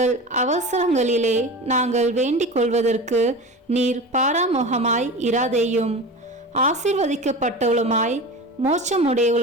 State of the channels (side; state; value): both; normal; correlation 0.31